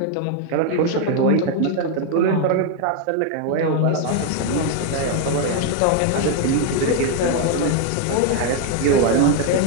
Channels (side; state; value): both; different; correlation 0.01